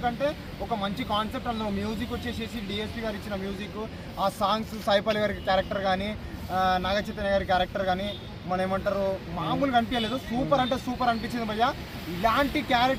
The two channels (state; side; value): identical; both; correlation 1.00